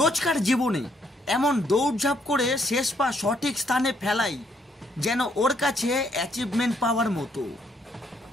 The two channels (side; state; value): both; normal; correlation 0.71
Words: জীবনে এমন দৌড়ঝাঁপ করে শেষ পা সঠিক স্থানে ফেলাই যেন ওর কাছে অ্যাচিভমেন্ট পাওয়ার মতো।